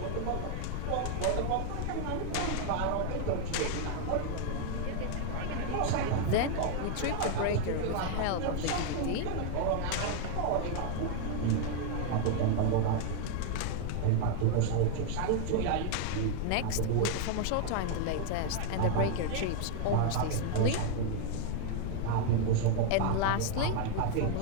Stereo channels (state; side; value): different; both; correlation 0.00